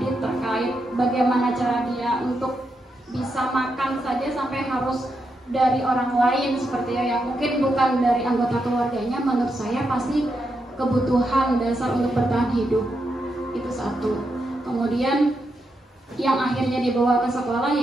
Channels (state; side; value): normal; both; correlation 0.84